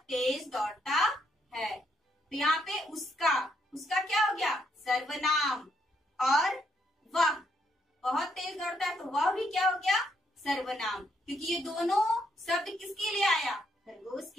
तेज दौड़ता है। तो यहाँ पे उसका क्या हो गया? सर्वनाम। और वह बहुत तेज दौड़ता है, तो वह भी क्या हो गया? सर्वनाम। क्योंकि ये दोनों शब्द किसके लिए आया? खरगोश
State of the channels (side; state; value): both; normal; correlation 0.75